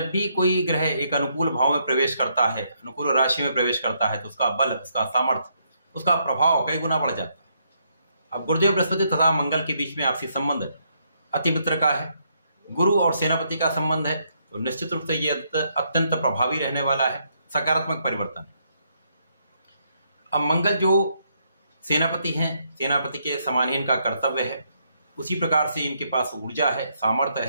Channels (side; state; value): both; inverted; correlation -0.75